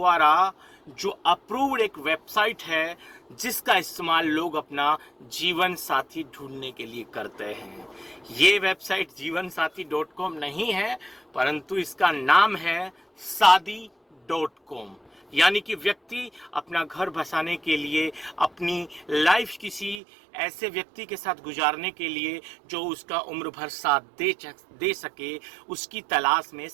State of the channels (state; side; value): drops out; left; at 20.0 s